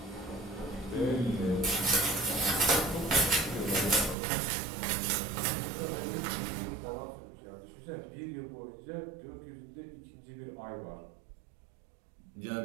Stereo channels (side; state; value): left; drops out; at 4.2 s